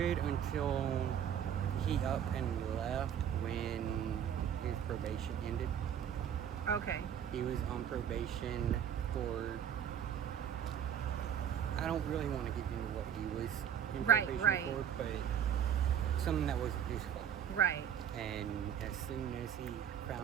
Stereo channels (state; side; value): quieter; left; 9.0 dB